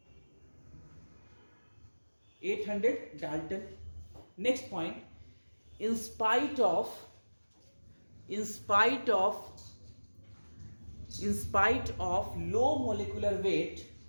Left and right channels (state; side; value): inverted; both; correlation -1.00